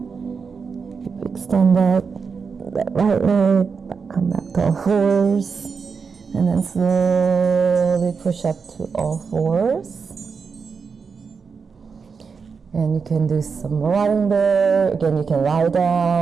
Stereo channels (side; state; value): left; quieter; 5.5 dB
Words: You extend that right leg, come back to all fours. And then slowly push up to all fours. And you can do some rotting there. Again, you can lie